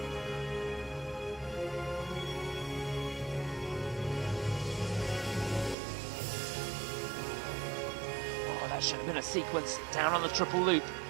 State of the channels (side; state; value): left; drops out; at 5.8 s